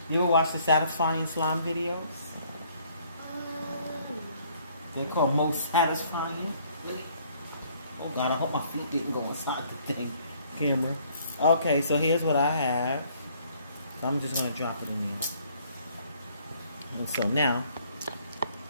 You ever watch the satisfying slime videos? They're called most satisfying. Oh God, I hope my feet didn't go inside the thing. Camera. Okay, so here's what I have. So I'm just gonna drop it in there. And so now,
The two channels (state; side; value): inverted; both; correlation -0.62